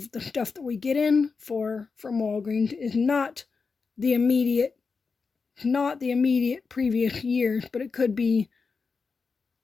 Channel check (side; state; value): right; quieter; 4.8 dB